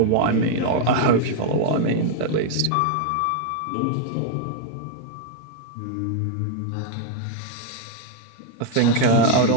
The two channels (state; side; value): different; both; correlation 0.00